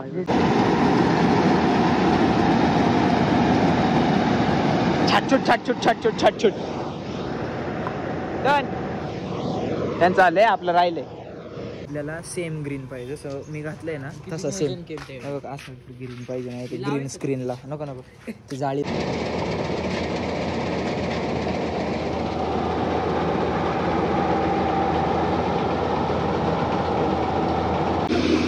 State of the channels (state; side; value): identical; both; correlation 1.00